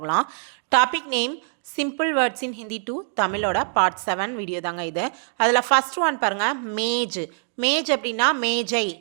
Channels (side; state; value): left; silent; 63 dB below the other